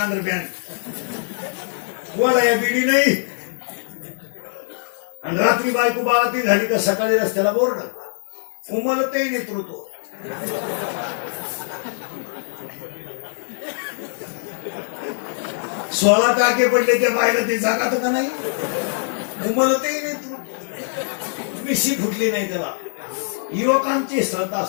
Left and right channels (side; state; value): right; silent; digital silence